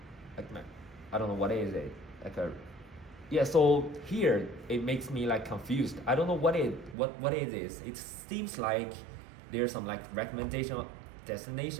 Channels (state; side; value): drops out; left; at 7.0 s